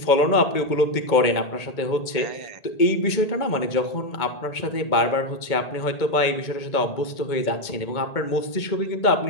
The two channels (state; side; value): late; right; 2.2 ms